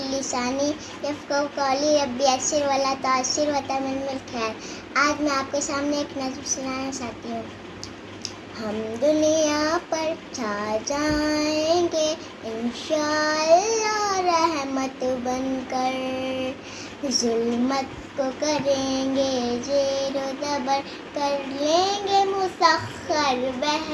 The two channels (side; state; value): both; identical; correlation 1.00